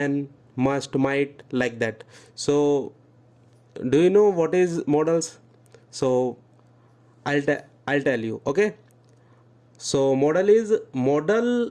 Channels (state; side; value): identical; both; correlation 1.00